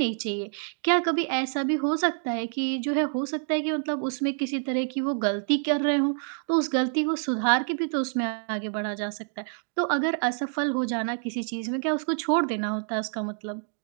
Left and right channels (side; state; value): left; silent; 60 dB below the other